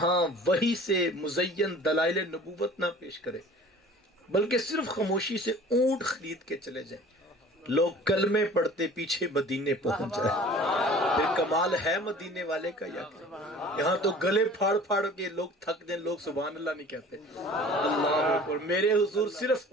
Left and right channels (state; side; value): normal; both; correlation 0.45